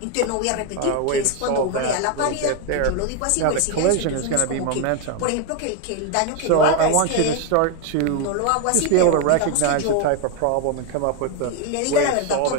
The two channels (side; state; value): both; different; correlation 0.01